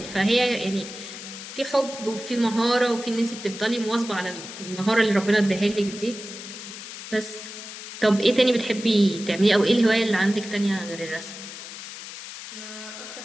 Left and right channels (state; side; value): noise; left; hiss, 11 dB below the sound